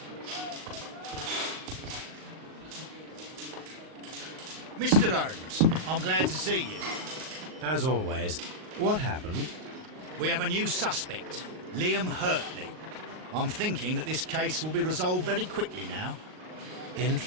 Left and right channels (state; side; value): late; left; 38 ms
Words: Mr. Holmes, I'm glad to see you. As always, what happened? We have a new suspect, Liam Hurtley. I'm thinking that this case will be resolved very quickly now.